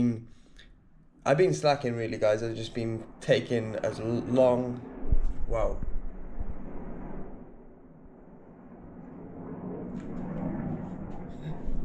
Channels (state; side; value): identical; both; correlation 1.00